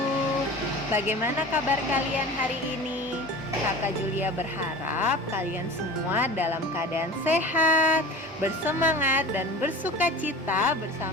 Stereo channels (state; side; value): normal; both; correlation 0.36